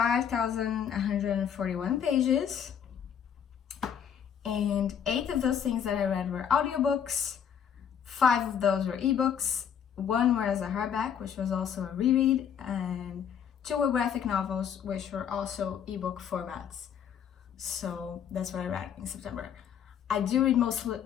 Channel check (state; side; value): quieter; right; 8.3 dB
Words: pages, and 8 of those things that I read were audiobooks, 5 of those were ebooks, 1 was a hardback, which was also a reread, and 2 were graphic novels, which were also ebook formats. So that's what I read in September. I do read